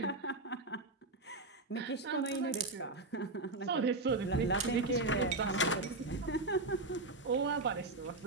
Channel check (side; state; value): left; quieter; 3.1 dB